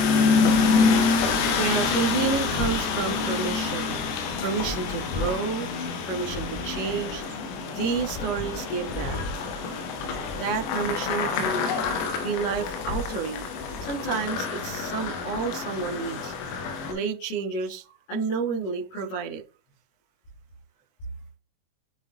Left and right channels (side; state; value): right; late; 22 ms